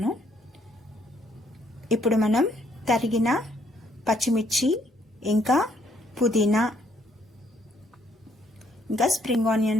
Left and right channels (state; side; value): normal; both; correlation 0.68